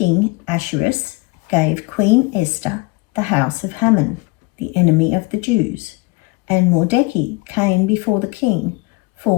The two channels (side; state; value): right; quieter; 23.9 dB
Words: Ahasuerus gave Queen Esther the house of Haman, the enemy of the Jews, and Mordecai came before the king,